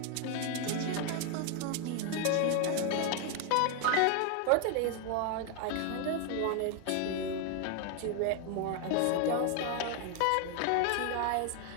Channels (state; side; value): different; both; correlation 0.01